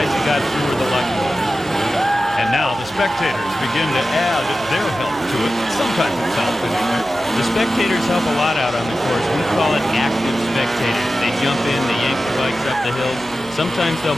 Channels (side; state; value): right; noise; hum, 22 dB below the sound